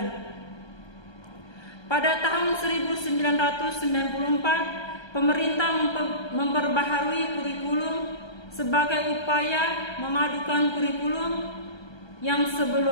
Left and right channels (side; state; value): right; late; 1.3 ms